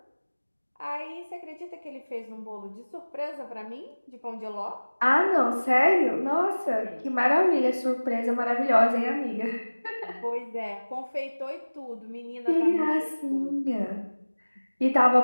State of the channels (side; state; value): both; inverted; correlation -1.00